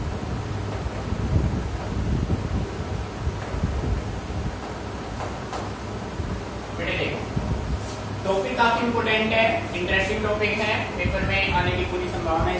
बेटे देखो, टॉपिक काफी इंपोर्टेंट है, इंटरेस्टिंग टॉपिक है, पेपर में आने की पूरी संभावना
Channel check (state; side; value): identical; both; correlation 1.00